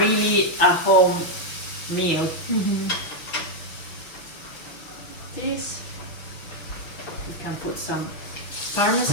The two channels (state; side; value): late; right; 5.9 ms